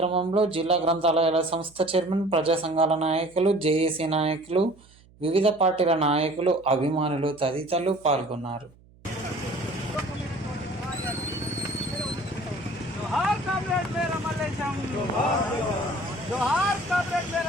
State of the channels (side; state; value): right; noise; hum, 27 dB below the sound